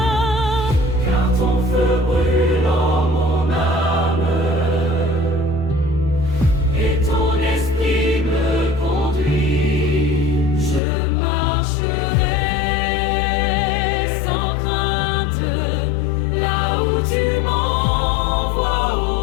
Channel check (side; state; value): right; drops out; at 10.8 s